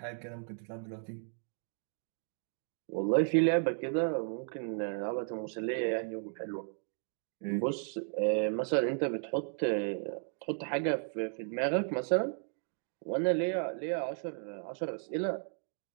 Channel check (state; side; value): silent; left; 55 dB below the other